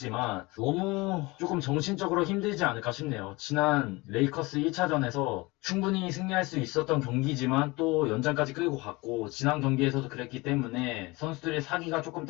너무 조금 정신적으로 힘들지 않을까 싶네요. 지난 레이커스 1차전에서 충분히 승리할 수 있었던 경기지만 또 연장까지 끌고 갔고 지난 경기에서도 그랬기 때문에 선수들의 사기가 조금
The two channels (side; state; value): right; quieter; 23.5 dB